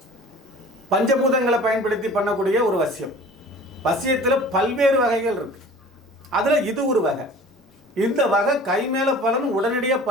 பஞ்சபூதங்களை பயன்படுத்தி பண்ணக்கூடிய ஒரு வசியம். வசியத்தில் பல்வேறு வகைகள் இருக்கு. அதில் இது ஒரு வகை. இந்த வகை கை மேல பலன் உடனடியாக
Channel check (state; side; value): normal; both; correlation 0.44